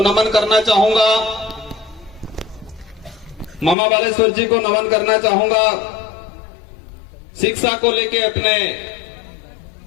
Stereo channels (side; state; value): right; drops out; at 3.8 s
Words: नमन करना चाहूंगा। मामा बालेश्वर जी को नमन करना चाहूंगा। शिक्षा को लेके अपने